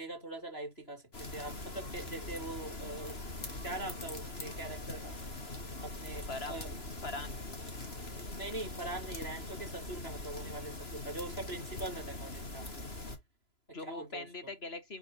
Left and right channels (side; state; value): right; late; 3.0 ms